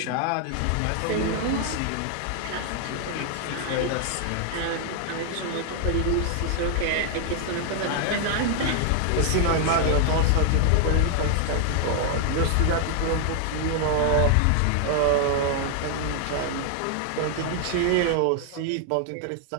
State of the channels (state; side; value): different; both; correlation 0.00